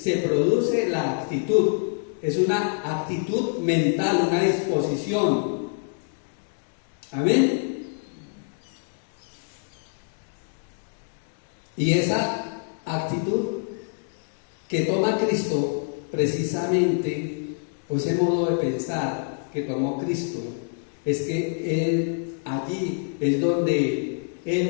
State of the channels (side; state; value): right; silent; 61 dB below the other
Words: produce la actitud. Es una actitud mental, una disposición. Amén. Y esa actitud que toma Cristo, precisamente, o ese modo de pensar que tomó Cristo, es que Él allí es donde